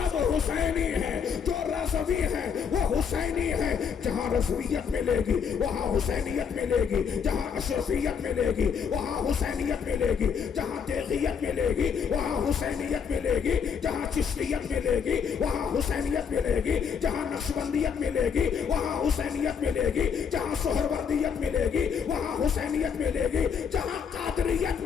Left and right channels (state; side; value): quieter; right; 6.8 dB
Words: حسینی ہیں، جو رسبی ہیں وہ حسینی ہیں، جہاں رسویت ملے گی وہاں حسینیت ملے گی، جہاں اشرفیت ملے گی وہاں حسینیت ملے گی، جہاں تیغیت ملے گی وہاں حسینیت ملے گی، جہاں چشتیت ملے گی وہاں حسینیت ملے گی، جہاں نقشبندیت ملے گی وہاں حسینیت ملے گی، جہاں سہروردیت ملے گی وہاں حسینیت ملے گی، جہاں قادریت